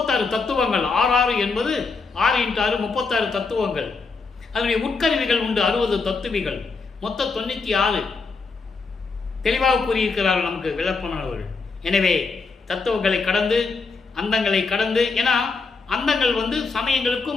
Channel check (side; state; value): right; quieter; 4.4 dB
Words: தத்துவங்கள், 6 என்பது 6 × 6 36 தத்துவங்கள். அதனுடைய உட்கருவிகள் உண்டு 60 தத்துவிகள், மொத்தம் 96 தெளிவாக கூறியிருக்கிறார்கள் நமக்கு விளப்பனவர்கள். எனவே தத்துவங்களை கடந்து, அந்தங்களை கடந்து, ஏன்னா அந்தங்கள் வந்து